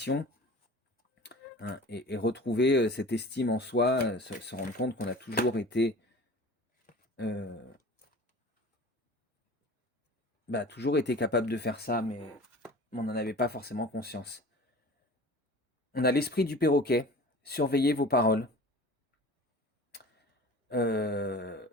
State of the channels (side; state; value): both; normal; correlation 0.41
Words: hein, et retrouver cette estime en soi, se rendre compte qu'on a toujours été capable de faire ça, mais on n'en avait pas forcément conscience. On a l'esprit du perroquet. Surveillez vos paroles.